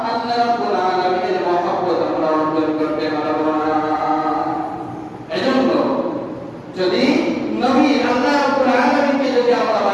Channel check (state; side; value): identical; both; correlation 1.00